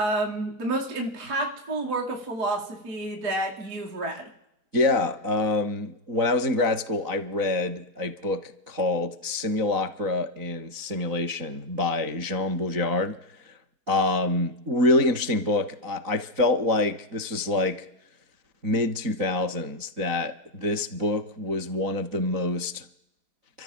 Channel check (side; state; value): left; late; 4.0 ms